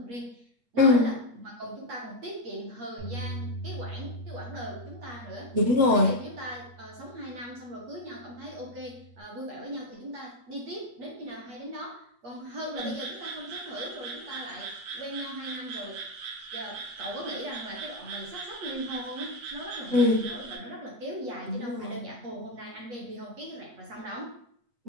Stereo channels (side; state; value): left; late; 8.4 ms